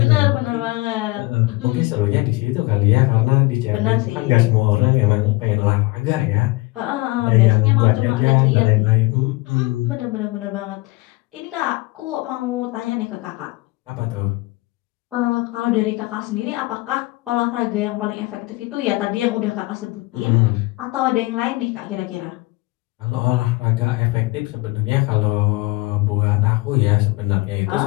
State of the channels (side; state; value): right; quieter; 22.5 dB